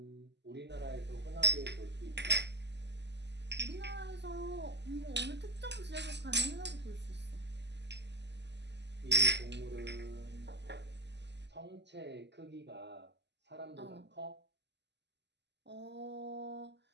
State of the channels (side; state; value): left; late; 0.50 ms